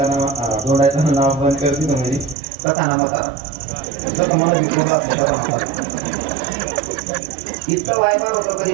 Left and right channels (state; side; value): drops out; left; at 2.4 s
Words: नाव बंद करते तो म्हणजे तसा ना मता तसं मला इतका वायबार होतो कधी